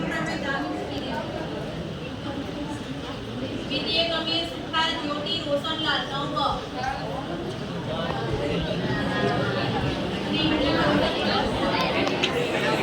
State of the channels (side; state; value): both; identical; correlation 1.00